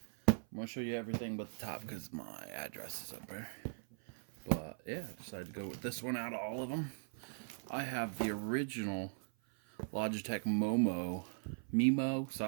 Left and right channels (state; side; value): silent; left; 51 dB below the other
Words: I'm going to show you everything but the top because my address is up there. But yeah, I decided to go with this one out of all of them. I have the original Logitech Mimo,